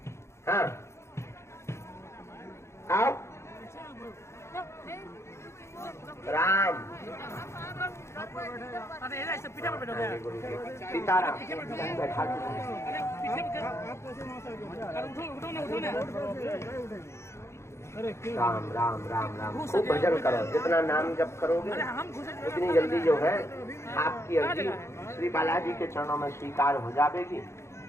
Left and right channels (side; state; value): right; late; 0.13 ms